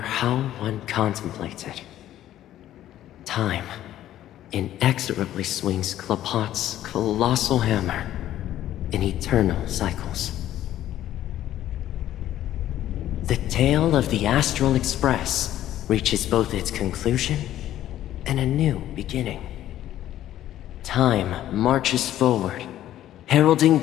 one contemplated, time inexorably swings Klapot's colossal hammer in eternal cycles. The tale of the Astral Express reaches both its conclusion and a new beginning. Time marches forward, heralding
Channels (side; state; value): right; quieter; 12.7 dB